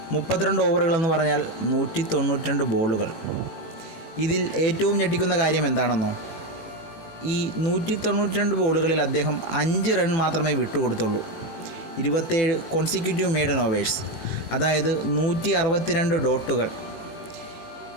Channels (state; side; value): late; right; 18 ms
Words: 32 ഓവറുകളെന്ന് പറഞ്ഞാൽ 192 ബോളുകൾ. ഇതിൽ ഏറ്റവും ഞെട്ടിക്കുന്ന കാര്യം എന്താണെന്നോ? ഈ 192 ബോളുകളിൽ അദ്ദേഹം 5 റൺ മാത്രമേ വിട്ടുകൊടുത്തുള്ളൂ. 27 കോൺസിക്യൂട്ടീവ് മെയ്ഡൻ ഓവേഴ്സ്, അതായത് 162 ഡോട്ടുകൾ.